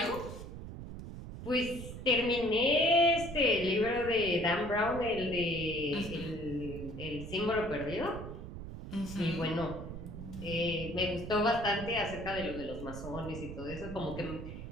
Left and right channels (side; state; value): right; noise; rumble, 9 dB below the sound